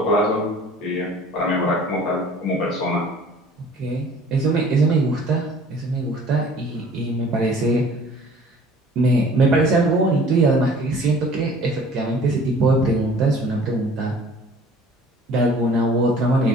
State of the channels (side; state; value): both; normal; correlation 0.50